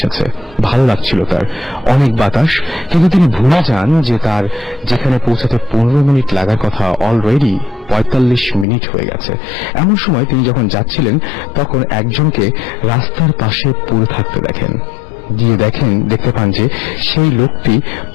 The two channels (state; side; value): drops out; right; at 8.7 s